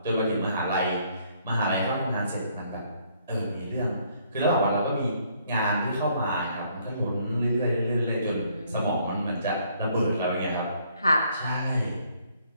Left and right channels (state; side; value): inverted; both; correlation -0.66